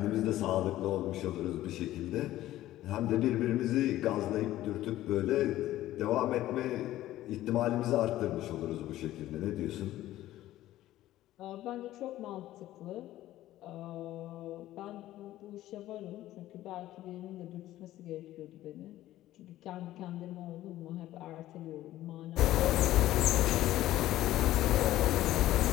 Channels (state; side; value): quieter; right; 14.6 dB